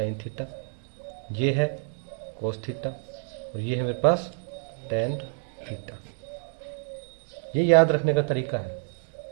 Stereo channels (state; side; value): silent; left; 59 dB below the other